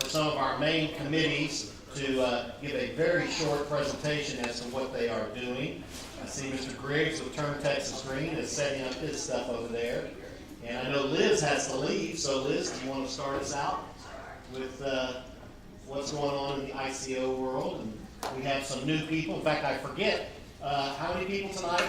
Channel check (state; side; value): identical; both; correlation 1.00